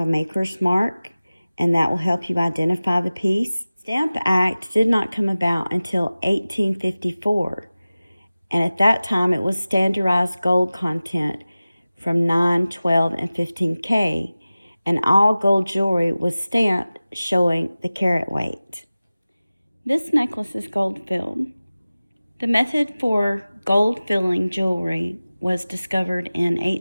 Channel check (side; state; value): both; inverted; correlation -0.97